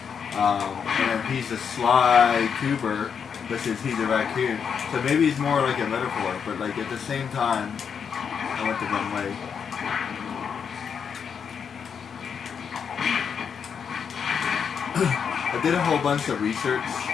And he's a Sly Cooper, which is he's a raccoon. So maybe it's more like a metaphor, but like at the same time, I went the wrong way. did a whole bunch of research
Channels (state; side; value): quieter; right; 6.9 dB